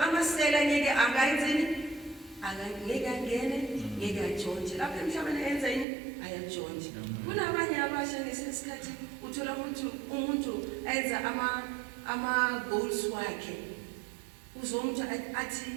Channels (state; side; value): drops out; left; at 5.9 s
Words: amasela ngeke angayenzeni? Angeke angene, ngeke ajonje. Lapha emhlabeni enza yini? Ayajonje. Kunabanye abasha ngesikhathi uthola umuntu enza ama goals wakhe. Uzomuntu athi